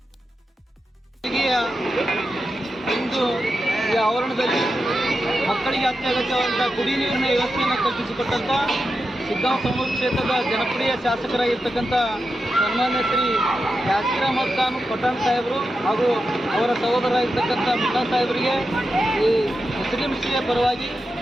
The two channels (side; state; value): both; normal; correlation 0.89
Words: ಇಂದು ಈ ಆವರಣದಲ್ಲಿ ಮಕ್ಕಳಿಗೆ ಅತ್ಯಗತ್ಯವಾದಂತಹ ಕುಡಿಯ ನೀರಿನ ವ್ಯವಸ್ಥೆಯನ್ನು ಕಲ್ಪಿಸಿಕೊಟ್ಟಂತ ಶಿಗ್ಗಾಂವ್ ಸೌನೂರು ಕ್ಷೇತ್ರದ ಜನಪ್ರಿಯ ಶಾಸಕರಾಗಿರ್ತಕ್ಕಂಥ ಸನ್ಮಾನ್ಯ ಶ್ರೀ ಯಾಸಿರ್ ಅಹಮದ್ ಖಾನ್ ಪಠಾಣ್ ಸಾಹೇಬರು ಹಾಗೂ ಅವರ ಸಹೋದರರಾಗಿರ್ತಕ್ಕಂಥ ಮುಲ್ಲಾ ಸಾಹೇಬರಿಗೆ ಈ ಮುಸ್ಲಿಂ ಶ್ರೀಯ ಪರವಾಗಿ